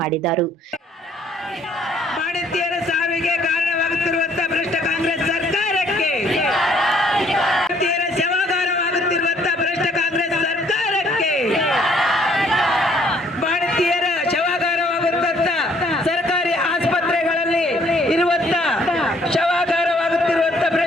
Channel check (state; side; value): normal; both; correlation 0.63